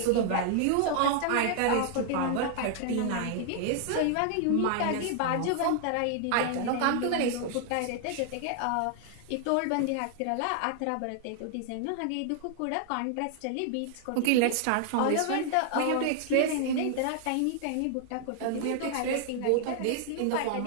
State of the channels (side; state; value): both; different; correlation 0.00